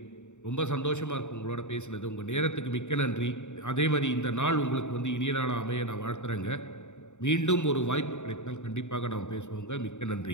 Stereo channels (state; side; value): late; right; 0.84 ms